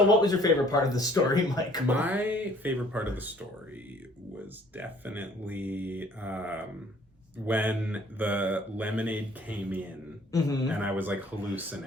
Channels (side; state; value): both; normal; correlation 0.57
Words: what was your favorite part of the story, Michael? My favorite part of the story was definitely when the lemonade came in and I was like